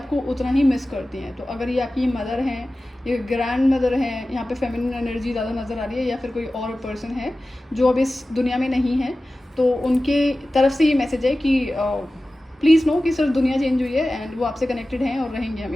उतना ही मिस करती हैं। तो अगर ये आपकी मदर हैं, ये ग्रैंड मदर हैं, यहाँ पे फेमिनिन एनर्जी ज़्यादा नज़र आ रही है, या फिर कोई और पर्सन है जो अब इस दुनिया में नहीं है, तो उनके तरफ से ये मैसेज है कि प्लीज़ नो कि सिर्फ दुनिया चेंज हुई है एंड वो आपसे कनेक्टेड हैं और रहेंगे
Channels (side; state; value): both; normal; correlation 0.96